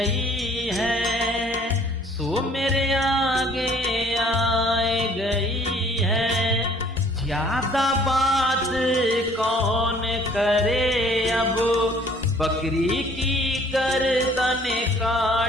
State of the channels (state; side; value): normal; both; correlation 0.57